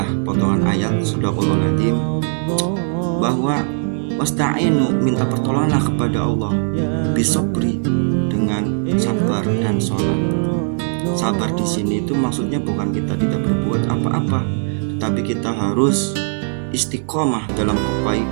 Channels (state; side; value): silent; left; 61 dB below the other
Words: potongan ayat Shadaqallahul Adzim, bahwa wasta'inu, minta pertolonganlah kepada Allah, bisabri, dengan sabar dan sholat. Sabar di sini itu maksudnya bukan kita tidak berbuat apa-apa, tetapi kita harus istiqomah dalam